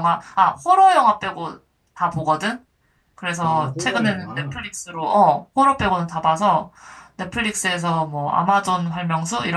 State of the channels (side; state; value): both; identical; correlation 1.00